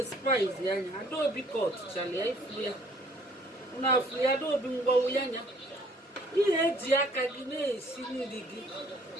spice anya. Adaobi kọt chali ya ifu ya. Una afu ya Adaobi ngwawu ya nya. Ihe eji aka gị na-esi nri gị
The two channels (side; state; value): both; normal; correlation 0.59